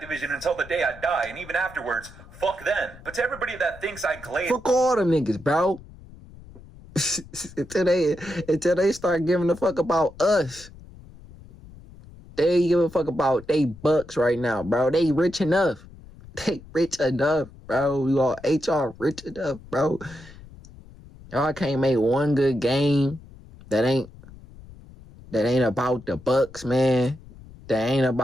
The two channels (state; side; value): noise; left; rumble, 19 dB below the sound